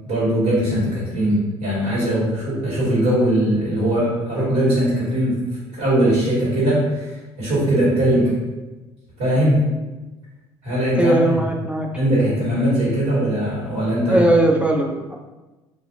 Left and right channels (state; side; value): normal; both; correlation 0.63